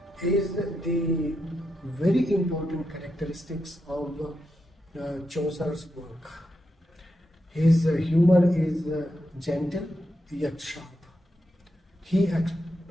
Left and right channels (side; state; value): both; normal; correlation 0.85